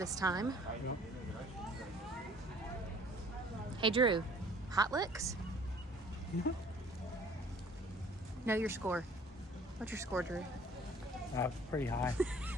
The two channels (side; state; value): both; normal; correlation 0.53